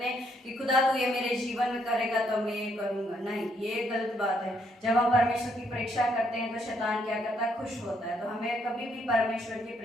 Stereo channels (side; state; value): both; normal; correlation 0.72